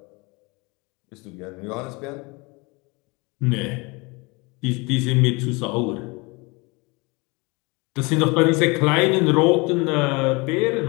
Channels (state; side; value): quieter; right; 27.1 dB